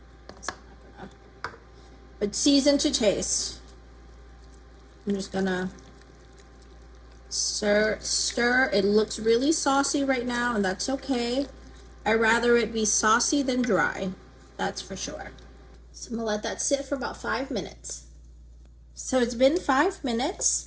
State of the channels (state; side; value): identical; both; correlation 1.00